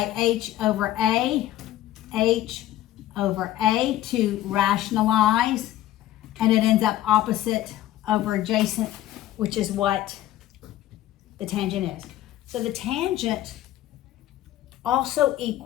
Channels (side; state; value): right; quieter; 14.0 dB